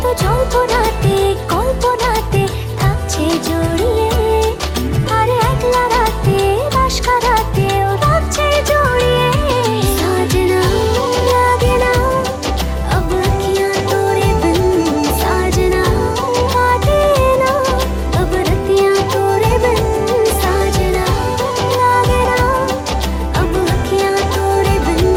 তো জল্পনাতে কল্পনাতে থাকছে জড়িয়ে আর একলা রাতে রাশ কারাতেও থাকছে জড়িয়ে সাজনা লাগে না अब अखियाँ तोरे बिन साजना काटे ना अब रतियाँ तोरे बिन साजना लागे ना अब अखियाँ तोरे बिन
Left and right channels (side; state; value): both; identical; correlation 1.00